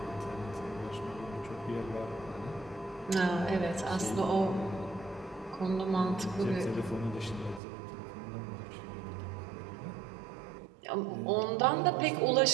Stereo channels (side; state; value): left; drops out; at 7.6 s